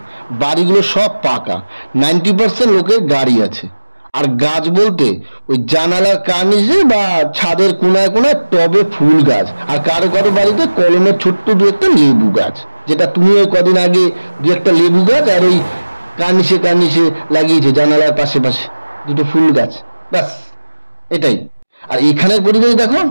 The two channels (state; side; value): inverted; both; correlation -1.00